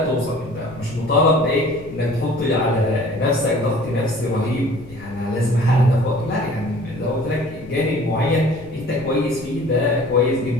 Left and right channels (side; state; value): left; noise; rumble, 17 dB below the sound